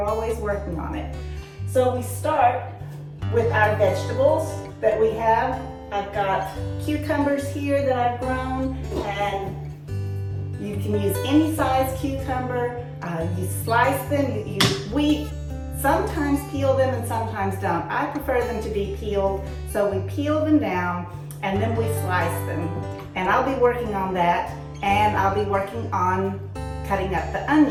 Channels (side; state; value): both; identical; correlation 1.00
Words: always working on it. So we start with our vegetables that we have. I've got cucumbers here that I've grown, and you can use any size cucumber. You slice them, we sometimes peel them and sometimes don't. I prefer them to be peeled, so we peel them down and then we slice them. And I'll be working on that, and I'll be working on cutting up the